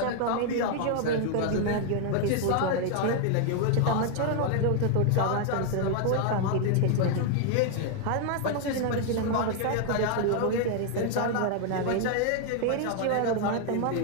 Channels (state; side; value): different; both; correlation 0.00